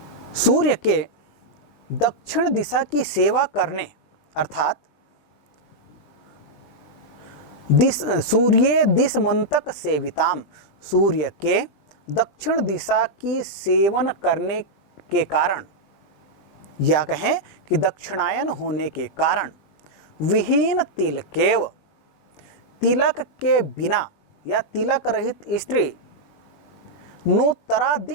सूर्य के दक्षिण दिशा की सेवा करने अर्थात सूर्य दिशमंतक सेविताम, सूर्य के दक्षिण दिशा की सेवन करने के कारण या कहें कि दक्षिणायन होने के कारण विहीन तिलकेव, तिलक के बिना या तिलक रहित स्त्री नोत्तरा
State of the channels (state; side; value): late; right; 20 ms